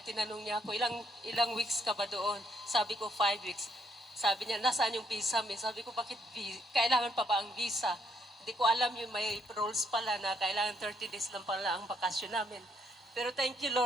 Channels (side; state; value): both; normal; correlation 0.72